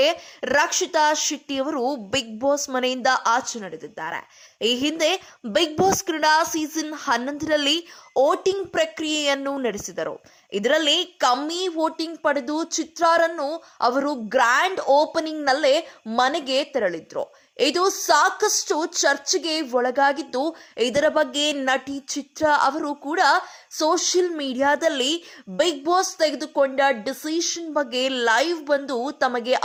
ರಕ್ಷಿತಾ ಶೆಟ್ಟಿ ಅವರು ಬಿಗ್ ಬಾಸ್ ಮನೆಯಿಂದ ಆಚೆ ನಡೆದಿದ್ದಾರೆ. ಈ ಹಿಂದೆ ಬಿಗ್ ಬಾಸ್ ಕನ್ನಡ ಸೀಸನ್ 11ರಲ್ಲಿ ವೋಟಿಂಗ್ ಪ್ರಕ್ರಿಯೆಯನ್ನು ನಡೆಸಿದರು. ಇದರಲ್ಲಿ ಕಮ್ಮಿ ವೋಟಿಂಗ್ ಪಡೆದು ಚಿತ್ರಾರನ್ನು ಅವರು ಗ್ರ್ಯಾಂಡ್ ಓಪನಿಂಗ್ ನಲ್ಲೇ ಮನೆಗೆ ತೆರಳಿದ್ರು. ಇದು ಸಾಕಷ್ಟು ಚರ್ಚೆಗೆ ಒಳಗಾಗಿದ್ದು, ಇದರ ಬಗ್ಗೆ ನಟಿ ಚಿತ್ರ ಅವರು ಕೂಡ ಸೋಷಿಯಲ್ ಮೀಡಿಯಾದಲ್ಲಿ ಬಿಗ್ ಬಾಸ್ ತೆಗೆದುಕೊಂಡ ಡಿಸಿಷನ್ ಬಗ್ಗೆ ಲೈವ್ ಬಂದು ತಮಗೆ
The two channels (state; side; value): identical; both; correlation 1.00